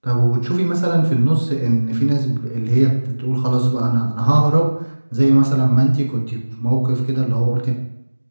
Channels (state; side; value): inverted; both; correlation -1.00